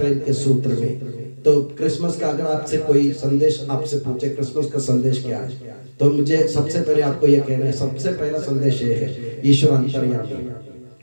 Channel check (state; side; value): inverted; both; correlation -1.00